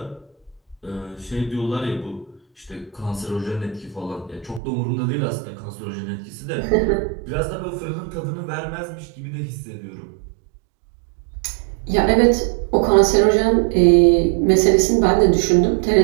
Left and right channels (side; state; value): left; drops out; at 4.6 s